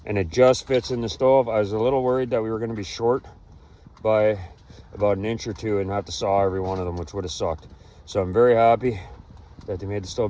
and it just fits in the stove. I was a little worried that we were going to be short by about an inch or two and have to saw every one of them, which would have sucked. So I'm very happy that they made the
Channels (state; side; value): identical; both; correlation 1.00